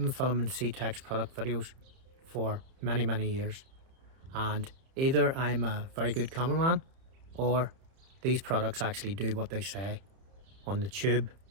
filming C-Tech's product videos for many years, and either I'm a very good cameraman or these products actually do what they say on the tube,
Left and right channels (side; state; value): left; late; 31 ms